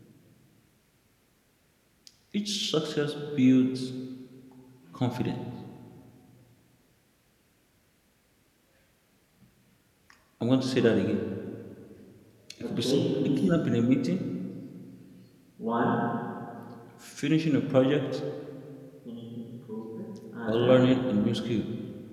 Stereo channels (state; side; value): identical; both; correlation 1.00